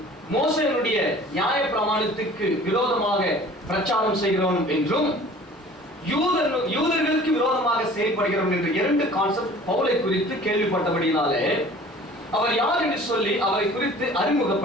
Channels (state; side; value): normal; both; correlation 0.47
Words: மோசேயுடைய நியாய பிரமாணத்துக்கு விரோதமாக பிரச்சாரம் செய்கிறோம் என்றும் யூதர்களுக்கு விரோதமாக செயல்படுகிறோம் என்ற 2 கான்செப்ட் பவுலை குறித்து கேள்விப்பட்டபடினாலே அவர் யார் என்று சொல்லி அவரை குறித்து